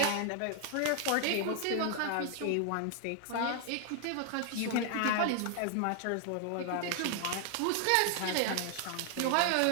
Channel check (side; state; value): both; different; correlation 0.00